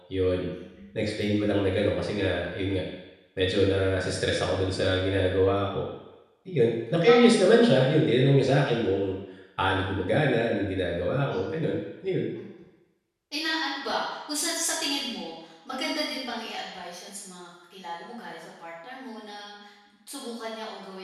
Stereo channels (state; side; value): identical; both; correlation 1.00